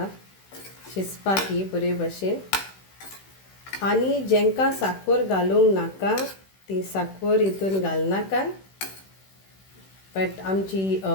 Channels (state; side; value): late; right; 16 ms